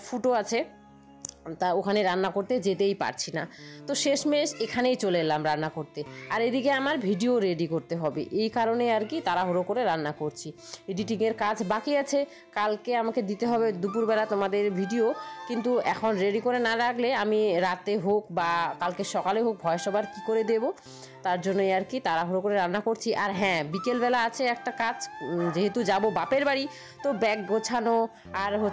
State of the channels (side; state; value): both; identical; correlation 1.00